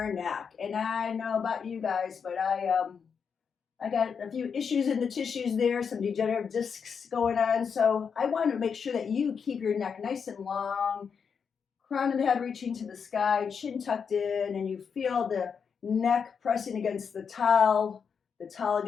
neck. And I know about you guys, but I got a few issues in the tissues there, some degenerative discs going on, so I want to make sure that you keep your neck nice and long, crown of the head reaching to the sky, chin tucked in, and you feel the neck pressing against the towel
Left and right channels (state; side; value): quieter; right; 6.4 dB